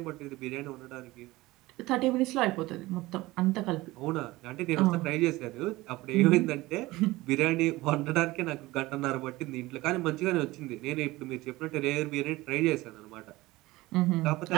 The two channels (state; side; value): quieter; left; 19.4 dB